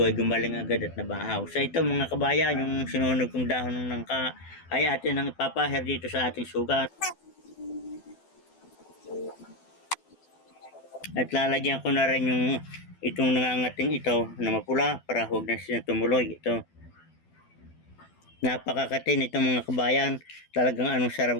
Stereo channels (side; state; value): right; late; 12 ms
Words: ay gumaling agad at nabahaw. So ito mga kabayan, yung sinunog kong dahon ng nangka ay atin ang ipapahir dito sa ating sugat. At lalagyan ko na rin yung itong nangangating ito na mapula para huwag na siya tumuloy. Ito. Napakakatin itong mga kabayan. Talagang anong sarap